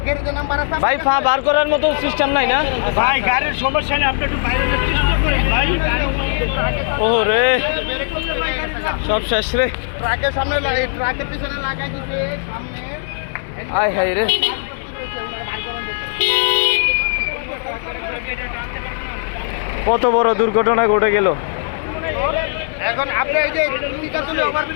ভাই, ফা বার করার মতো সিস্টেম নাই না ভাই? গাড়ির সমস্যা নেই, আপনি একটু বাইরে চেষ্টা করেন ভাই। ও রে, সব শেষ রে। ট্রাকের সামনে, ট্রাকের পিছনে লাগাই দিছে সামনে। আয় হায় রে, কত বড় দুর্ঘটনা ঘটে গেল। এখন আপনি এই যে টিকা তুলে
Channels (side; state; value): right; silent; digital silence